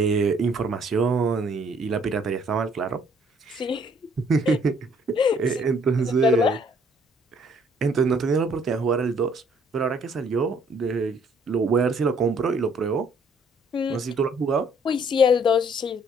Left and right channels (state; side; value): normal; both; correlation 0.62